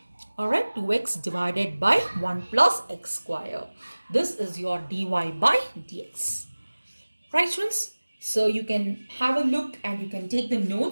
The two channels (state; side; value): inverted; both; correlation -1.00